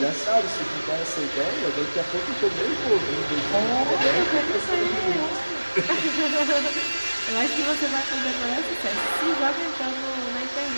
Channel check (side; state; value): both; inverted; correlation -1.00